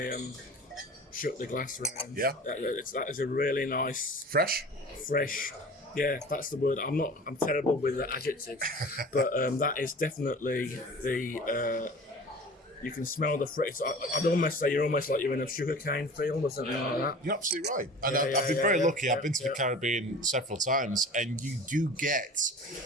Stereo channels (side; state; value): both; normal; correlation 0.40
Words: shook the glass around. Yeah. That is a really nice Fresh. Yeah, that's the word. I'm terrible with the adjectives, but that is definitely the. You can smell the fruit. I'd almost say you're almost like you're in a sugarcane field or something like that. You're absolutely right. And I've been very lucky. I've been to the Caribbean several times, and you do get,